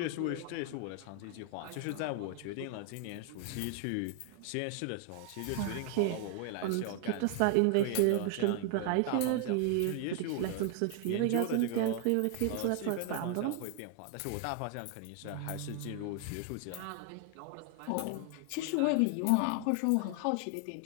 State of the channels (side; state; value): both; different; correlation 0.00